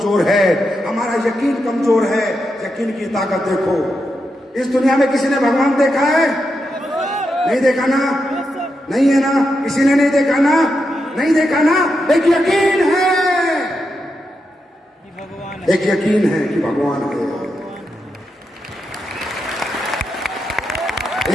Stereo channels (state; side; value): normal; both; correlation 0.85